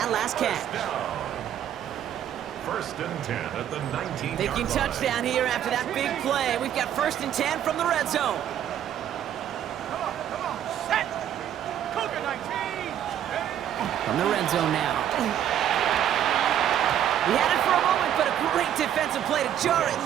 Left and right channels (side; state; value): left; quieter; 10.4 dB